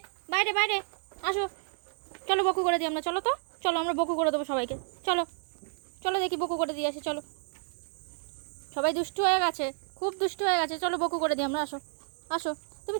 বাইরে বাইরে আসো, চলো বকু করে দিই আমরা, চলো তো, চলো আমরা বকু করে দেবো সবাইকে, চলো চলো দেখি বকু করে দিয়ে আসি, চলো। সবাই দুষ্টু হয়ে গেছে, খুব দুষ্টু হয়ে গেছে, চলো বকু করে দিই আমরা, আসো আসো। তুমি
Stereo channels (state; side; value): silent; left; 57 dB below the other